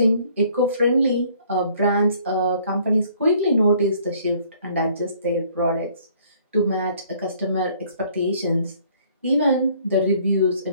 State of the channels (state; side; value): inverted; both; correlation -0.60